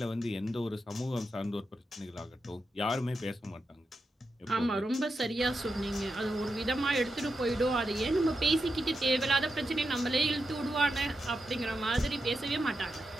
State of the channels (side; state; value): both; normal; correlation 0.87